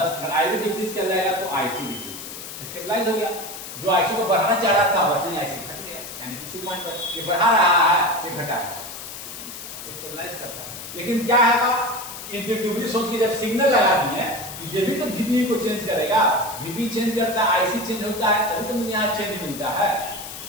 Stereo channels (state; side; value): noise; left; hiss, 11 dB below the sound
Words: आईबी डिक्रीज कर जाएगा तो आईसी डिक्रीज करेगा, स्टेबलाइज हो गया। जो आईसी को बढ़ाना चाह रहा था बस नहीं, आईसी घट गया, यानी उसी पॉइंट पर ये बढ़ा रहा है ये घटाएगा, स्टेबलाइज करता है। लेकिन क्या है, इंट्यूटिवली सोच के जब सिग्नल लगा दिए ये भी तो वीबी को चेंज करेगा, वीबी चेंज करता है, आईसी चेंज होता है, तभी तो मुझे यहाँ चेंज मिलता है,